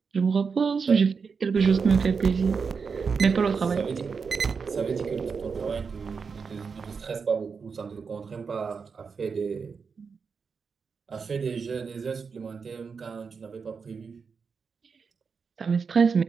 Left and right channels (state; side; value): quieter; left; 5.5 dB